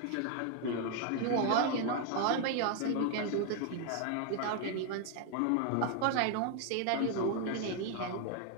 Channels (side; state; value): both; different; correlation 0.00